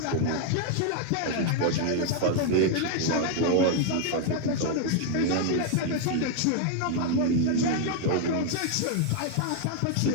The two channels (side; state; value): both; different; correlation 0.00